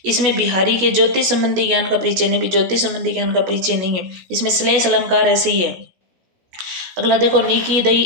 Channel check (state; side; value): late; left; 16 ms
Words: इसमें बिहारी के ज्योतिष संबंधी ज्ञान का परिचय नहीं, भी ज्योतिष संबंधी ज्ञान का परिचय नहीं है। इसमें श्लेष अलंकार है, सही है। अगला देखो, नीकी